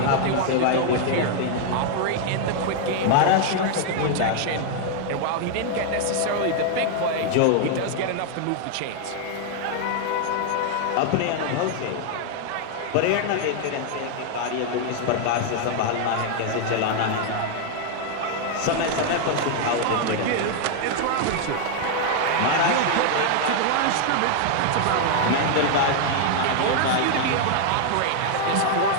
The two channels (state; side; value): different; both; correlation 0.00